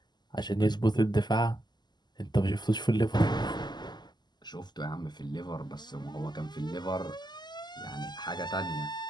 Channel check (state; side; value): late; right; 0.21 ms